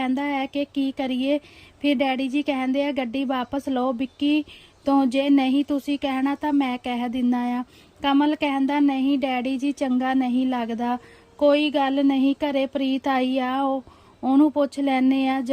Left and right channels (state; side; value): identical; both; correlation 1.00